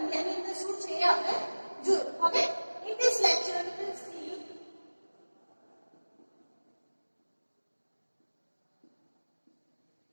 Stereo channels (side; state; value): both; inverted; correlation -1.00